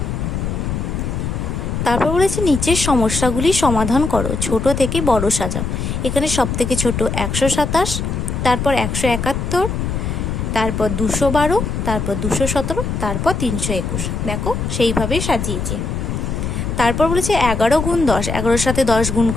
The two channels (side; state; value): left; noise; rumble, 3 dB below the sound